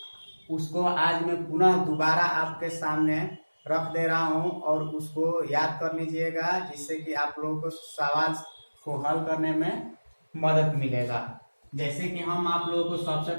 उसको आज मैं पुनः दोबारा आपके सामने रख दे रहा हूँ और उसको याद कर लीजिएगा, जिससे कि आप लोगों को सवाल को हल करने में मदद मिलेगा। जैसे कि हम आप लोगों को सबसे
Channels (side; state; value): both; inverted; correlation -1.00